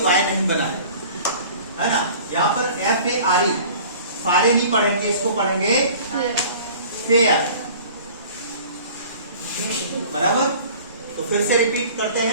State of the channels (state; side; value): inverted; both; correlation -0.46